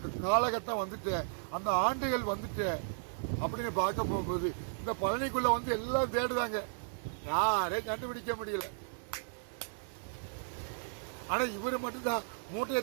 காலகட்டம் வந்துட்டு அந்த ஆண்டுகள் வந்துட்டு அப்படின்னு பார்க்க போகும்போது இந்த பழனிக்குள்ள வந்து எல்லாம் தேடுதாங்க, யாரையும் கண்டுபிடிக்க முடியல. ஆனா இவரு மட்டும்தான் மூட்டை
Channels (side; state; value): left; silent; digital silence